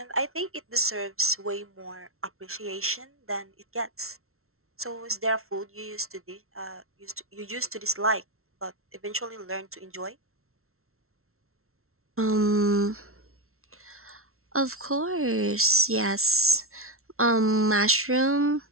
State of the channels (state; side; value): late; left; 0.62 ms